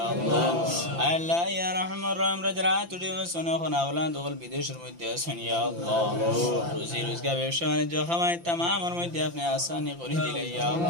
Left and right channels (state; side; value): late; left; 5.8 ms